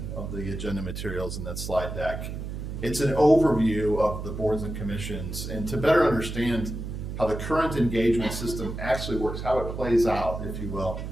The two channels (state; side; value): noise; right; hum, 6 dB below the sound